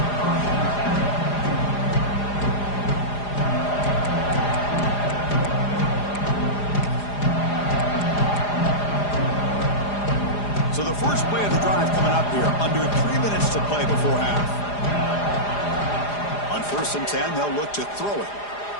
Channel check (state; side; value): late; right; 4.9 ms